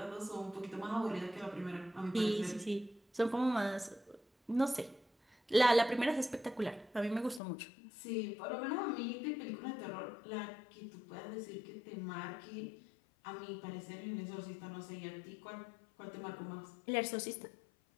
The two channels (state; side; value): drops out; right; at 7.4 s